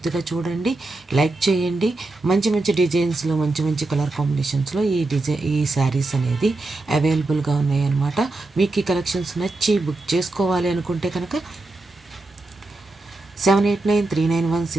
చూడండి, లైక్ చేయండి. మంచి మంచి డిజైన్స్లో, మంచి మంచి కలర్ కాంబినేషన్స్లో ఈ శారీస్ అనేది అవైలబుల్గా ఉన్నాయి అనమాట. మీకు ఈ కలెక్షన్స్ నచ్చి బుక్ చేసుకోవాలి అనుకుంటే కనుక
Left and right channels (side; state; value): left; quieter; 3.0 dB